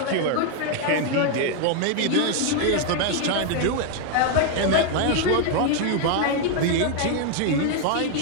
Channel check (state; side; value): different; both; correlation 0.00